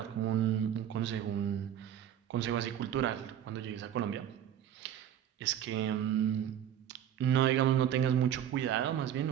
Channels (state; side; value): quieter; left; 10.3 dB